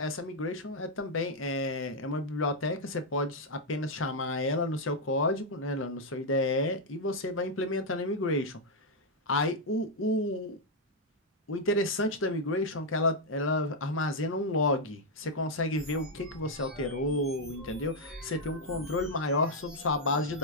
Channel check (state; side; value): normal; both; correlation -0.01